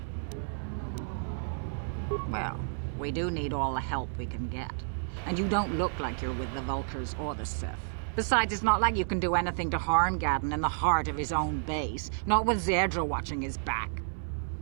Well, we do need all the help we can get. And you don't look like you're with the Vulcars or the Sith. Besides, it's not like you can do anything to harm Gadon in the heart of his own base. Not with Zedra watching his back.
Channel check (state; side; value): silent; left; 57 dB below the other